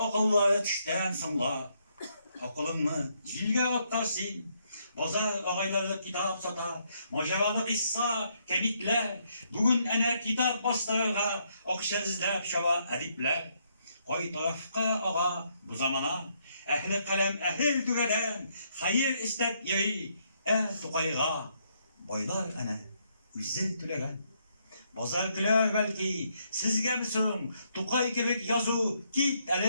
tişten sımla, Akılını zilge attarsın, Bozar ağayları kitap sata, Maceralı kissa, kemikler, Bugün ene kitap bastırırga, Okşezlep şava edipler, Koy tarafka ağa bu zamana, Ehli kalem ehil düveden, Hayır istep yeri, tukayga, Boylar ene, üzzet tülegen. Bozar güler belki, sizge misin, Tukay kibik yazı, git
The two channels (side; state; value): both; inverted; correlation -0.74